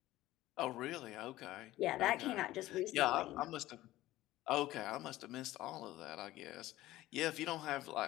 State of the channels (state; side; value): quieter; right; 16.1 dB